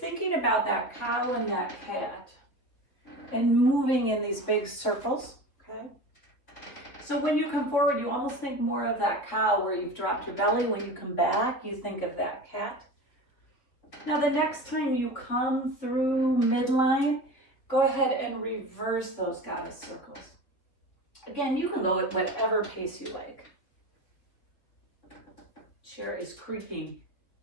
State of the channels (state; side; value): late; right; 3.7 ms